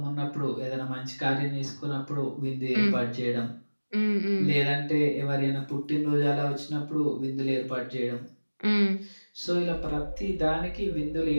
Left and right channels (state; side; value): inverted; both; correlation -1.00